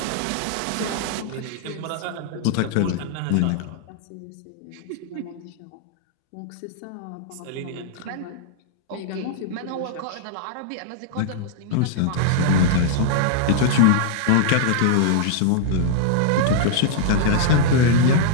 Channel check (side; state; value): both; different; correlation -0.01